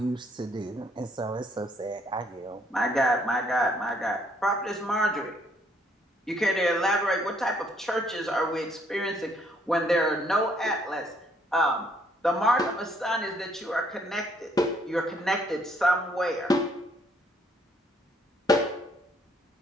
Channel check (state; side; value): normal; both; correlation 0.67